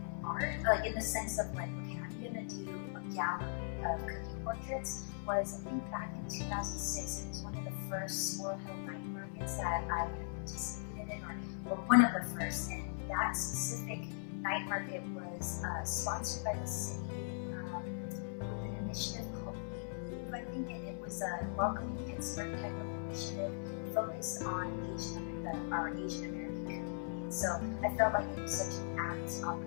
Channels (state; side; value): silent; right; 51 dB below the other